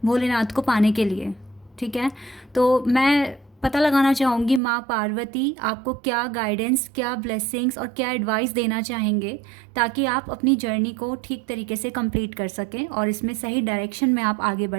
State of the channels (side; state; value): left; drops out; at 4.6 s